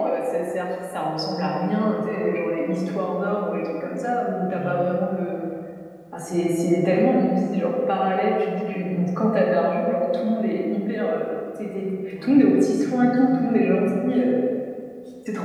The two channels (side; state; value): both; identical; correlation 1.00